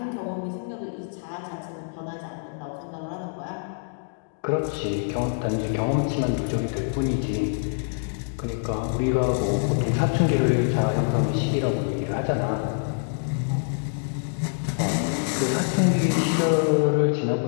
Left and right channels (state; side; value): silent; right; digital silence